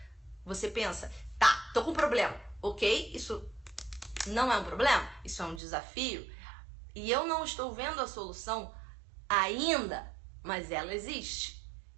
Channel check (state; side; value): drops out; left; at 5.6 s